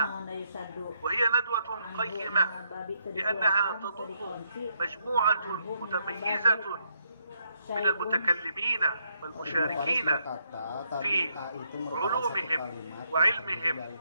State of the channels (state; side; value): inverted; both; correlation -0.74